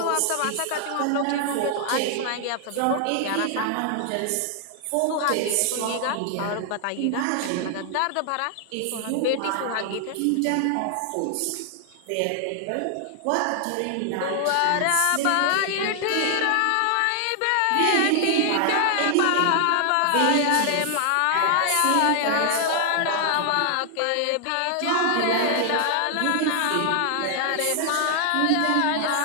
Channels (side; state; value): both; different; correlation 0.00